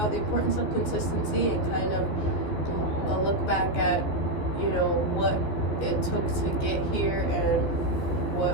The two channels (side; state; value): right; late; 14 ms